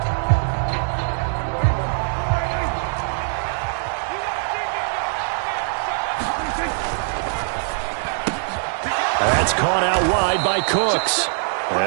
That's caught out wide by Cooks.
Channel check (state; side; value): silent; left; digital silence